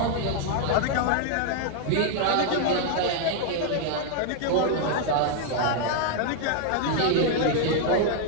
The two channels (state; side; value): different; both; correlation 0.00